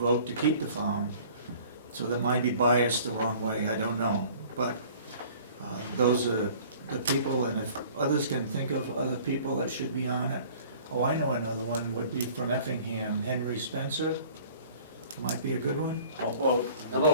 to keep the farm. So that might be biased the wrong way, I don't know. But those are the people, and if others can think of other people that should be on it. Oh, I know another one would be from Effingham, Henry Spencer, might be a good one. How about How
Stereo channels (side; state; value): both; inverted; correlation -0.49